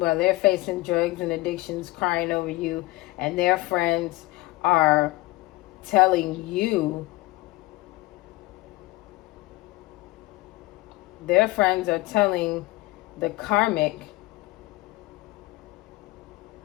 drugs and addictions, crying over you, and their friends are telling you, their friends are telling the Karmic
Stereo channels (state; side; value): quieter; right; 20.5 dB